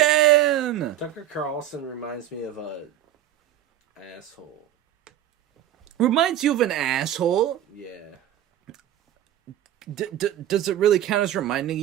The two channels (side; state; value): left; quieter; 11.7 dB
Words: Tucker Carlson reminds me of a asshole. Reminds you of an asshole? Yeah. Does it really count as reminding